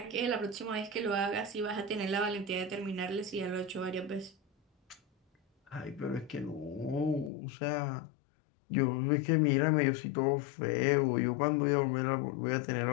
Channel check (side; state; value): right; drops out; at 7.3 s